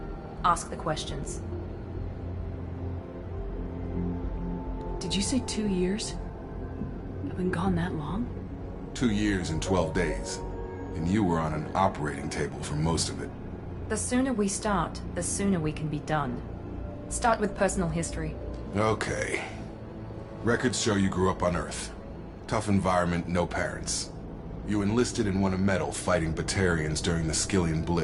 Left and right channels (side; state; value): both; identical; correlation 1.00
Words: Ask the questions. Did you say 2 years? I've been gone that long? 2 years and 12 days. And you were on an operating table for most of it. The sooner we start, the sooner we can be done. Start with personal history. Okay. Records show you grew up on Earth. Tough environment, no parents. You enlisted and won a medal fighting Batarians during the Skillian